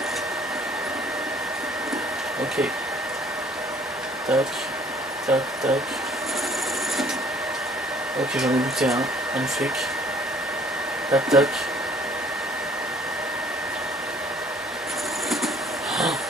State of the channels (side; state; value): both; normal; correlation 0.57